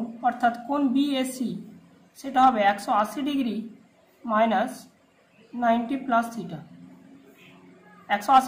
অর্থাৎ কোণ বিএসি সেটা হবে 180 degree minus 90 plus theta.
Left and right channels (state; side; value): identical; both; correlation 1.00